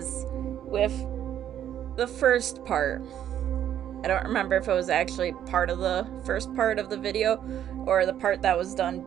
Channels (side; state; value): left; quieter; 10.6 dB